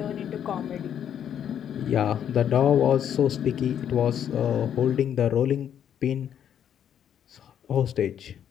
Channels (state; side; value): quieter; right; 9.3 dB